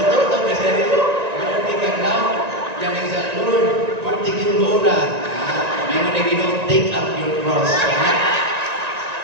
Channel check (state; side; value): late; left; 1.9 ms